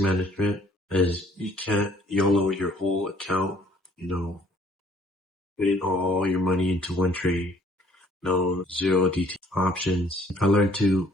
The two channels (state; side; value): normal; both; correlation 0.59